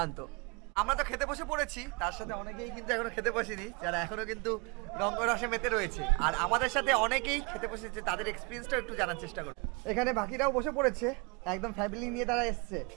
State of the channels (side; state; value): left; quieter; 29.3 dB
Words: আমরা তো খেতে বসে পড়েছি, তার সাথে অনেকেই কিন্তু এখনো খেতে বসেনি, যারা এখনো কিন্তু রঙ্গরসে মেতে রয়েছে। আর আমাদের সাথে অনেকেই খেতে বসেছে, তাদের এক্সপিরিয়েন্সটা একটু জানার চেষ্টা করব। এখানে বাকিরাও বসে পড়েছে, একদম ফ্যামিলি নিয়ে তারা এসছে।